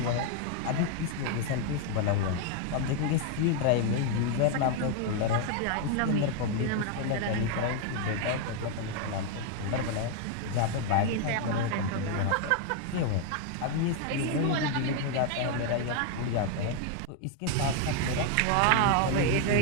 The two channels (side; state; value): both; different; correlation 0.01